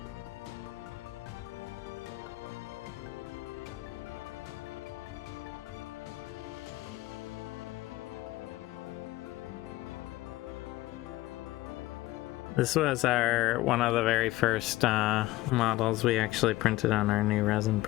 This was one of the very first models we actually printed on our new resin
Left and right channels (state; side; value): quieter; right; 17.7 dB